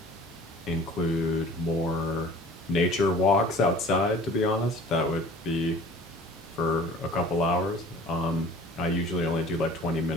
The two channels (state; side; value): normal; both; correlation 0.46